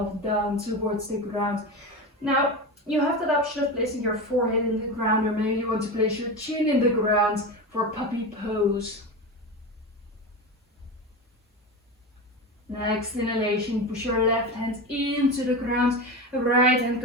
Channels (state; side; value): normal; both; correlation 0.23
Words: down towards the ground. Now, you have that option of placing your forehead in the ground, or maybe you want to place your chin in the ground for puppy pose. Next inhalation, push your left hand into the ground. Right hand